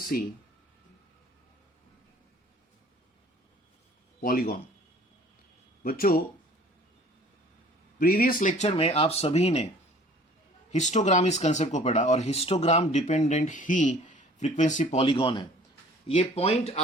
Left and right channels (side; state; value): both; normal; correlation 0.50